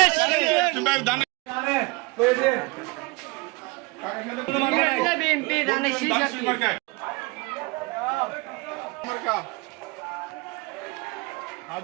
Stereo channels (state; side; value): quieter; left; 24.7 dB